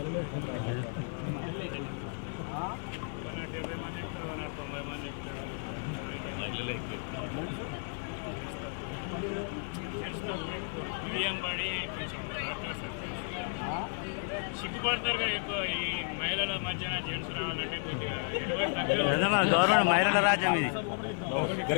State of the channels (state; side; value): silent; right; 56 dB below the other